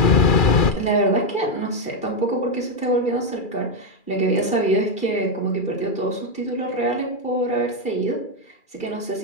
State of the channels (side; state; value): right; late; 2.4 ms